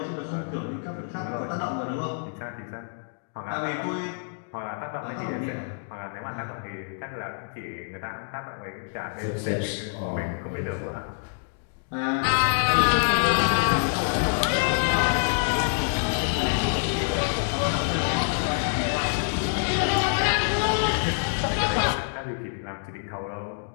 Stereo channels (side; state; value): right; silent; digital silence